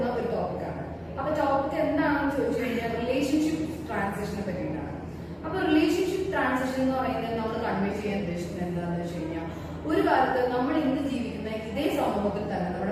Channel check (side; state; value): both; identical; correlation 1.00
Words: ഒരു ടോപ്പിക്കാണ്. അപ്പൊ ടോപ്പിക് എന്താണെന്ന് ചോദിച്ചു കഴിഞ്ഞാൽ റിലേഷൻഷിപ്പ് ട്രാൻസിഷനെ പറ്റിയിട്ടാണ്. അപ്പൊ റിലേഷൻഷിപ്പ് ട്രാൻസിഷൻ എന്ന് പറയുന്നത് നമ്മൾ കൺവേ ചെയ്യാൻ ഉദ്ദേശിക്കുന്നത് എന്താണെന്ന് വെച്ച് കഴിഞ്ഞാൽ, ഒരു കാലത്ത് നമ്മൾ ഇന്ന് ജീവിക്കുന്ന ഇതേ സമൂഹത്തിൽ തന്നെ